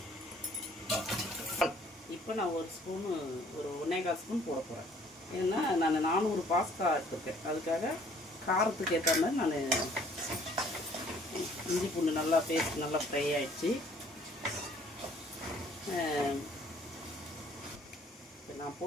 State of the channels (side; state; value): both; normal; correlation 0.58